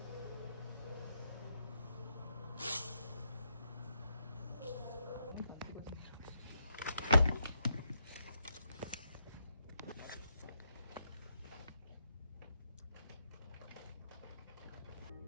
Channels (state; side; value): inverted; both; correlation -0.79